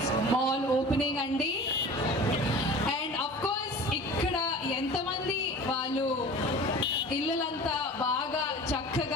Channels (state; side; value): normal; both; correlation 0.39